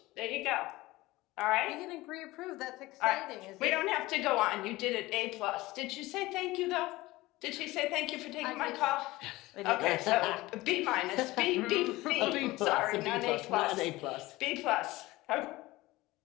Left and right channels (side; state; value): right; quieter; 19.3 dB